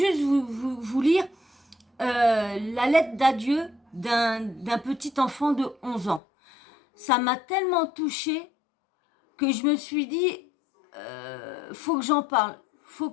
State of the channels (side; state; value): right; drops out; at 6.2 s